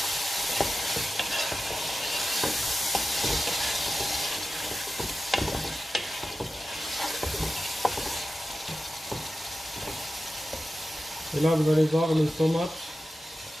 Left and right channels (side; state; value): both; normal; correlation 0.93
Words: Et là, vous allez voir le tomate